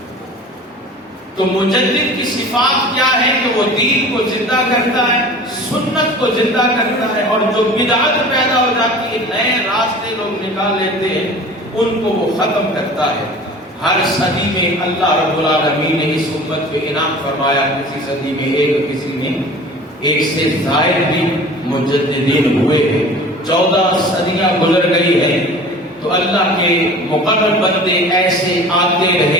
تو مجدد کی صفات کیا ہے کہ وہ دین کو زندہ کرتا ہے، سنت کو زندہ کرتا ہے، اور جو بدعت پیدا ہو جاتی ہے، نئے راستے لوگ نکال لیتے ہیں، ان کو وہ ختم کرتا ہے۔ ہر صدی میں اللہ رب العالمین نے اس امت پہ انعام فرمایا، کسی صدی میں ایک، کسی میں ایک سے زائد بھی مجددین ہوئے ہیں۔ 14 صدیاں گزر گئی ہیں تو اللہ کے مقرر بندے ایسے آتے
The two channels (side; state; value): both; normal; correlation 0.41